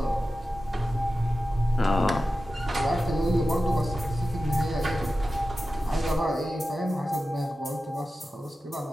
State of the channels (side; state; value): both; normal; correlation 0.93